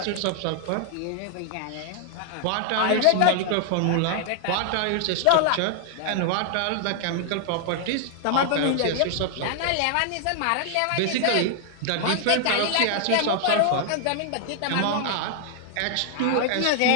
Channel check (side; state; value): both; different; correlation 0.00